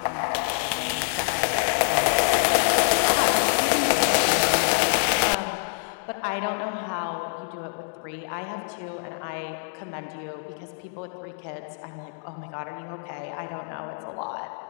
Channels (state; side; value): silent; right; digital silence